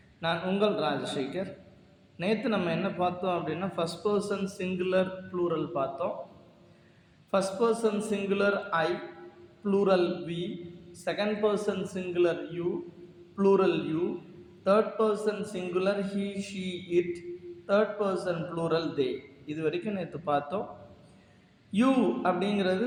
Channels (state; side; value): identical; both; correlation 1.00